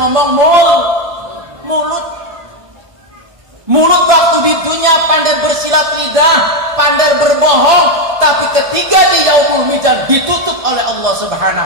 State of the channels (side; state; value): left; late; 1.6 ms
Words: mulut waktu di dunia pandai bersilat lidah, pandai berbohong, tapi ketika di yaumul mizan ditutup oleh Allah